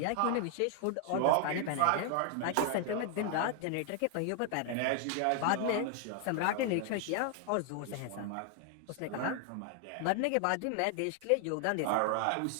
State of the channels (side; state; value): both; different; correlation 0.00